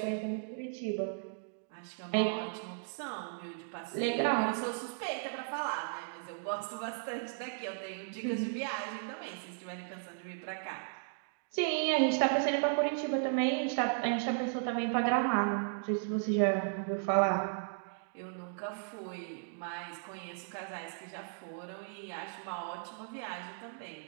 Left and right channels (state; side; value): silent; left; digital silence